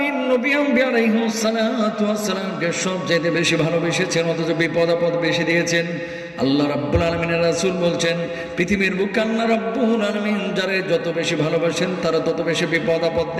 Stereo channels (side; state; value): both; identical; correlation 1.00